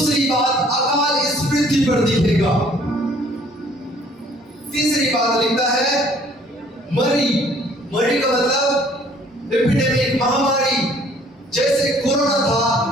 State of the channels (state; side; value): normal; both; correlation 0.58